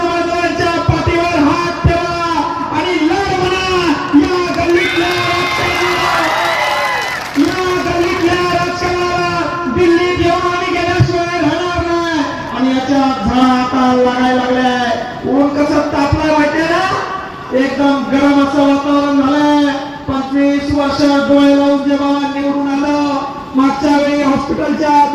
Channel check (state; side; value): identical; both; correlation 1.00